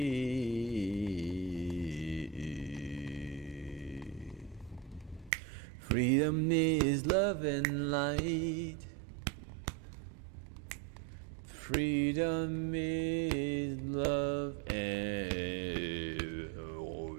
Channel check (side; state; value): left; drops out; at 5.3 s